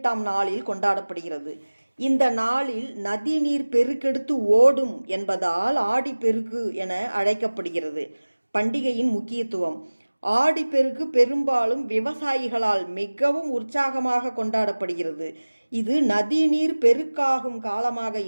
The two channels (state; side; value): inverted; both; correlation -1.00